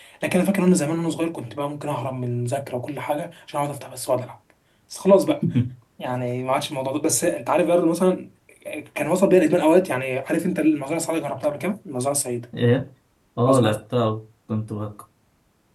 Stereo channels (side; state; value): both; identical; correlation 1.00